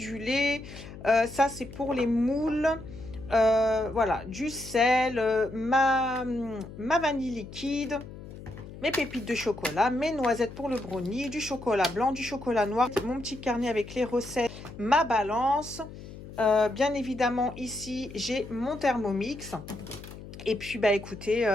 lait. Ça, c'est pour les moules. Voilà, du sel, ma vanille liquide, mes pépites de chocolat, mes noisettes pour le brownie, du chocolat blanc, du chocolat noir, mon petit carnet avec les recettes, ma balance. Bien évidemment, ici, j'ai mon Thermomix. Et puis, bah écoutez,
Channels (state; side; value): noise; left; hum, 14 dB below the sound